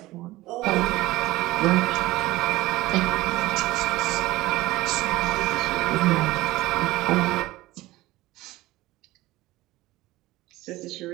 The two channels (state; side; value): quieter; left; 18.2 dB